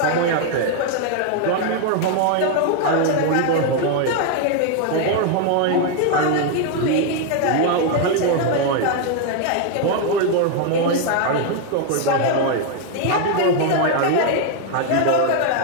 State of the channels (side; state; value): both; different; correlation 0.01